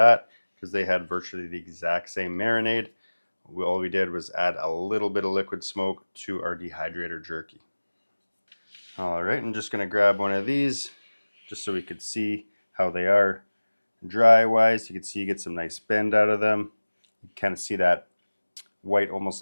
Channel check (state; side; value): inverted; both; correlation -1.00